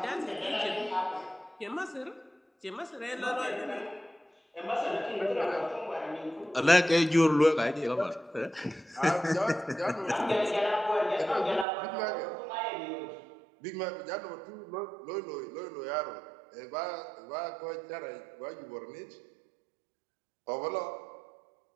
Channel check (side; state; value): left; drops out; at 11.7 s